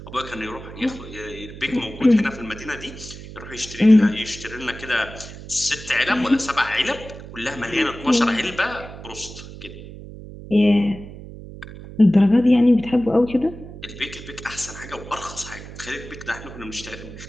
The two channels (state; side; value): noise; right; hum, 14 dB below the sound